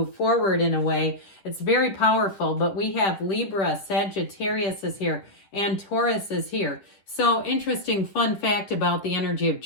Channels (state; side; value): late; right; 10 ms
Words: forward in a way. It's very powerful, but we have Libra, Sagittarius is here, and Taurus is here. So interesting fun fact about the energy of